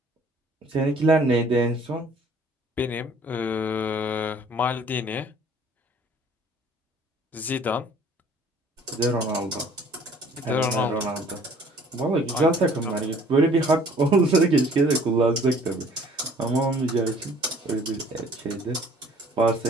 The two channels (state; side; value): normal; both; correlation 0.54